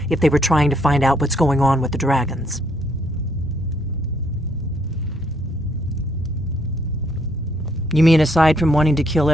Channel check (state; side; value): normal; both; correlation 0.70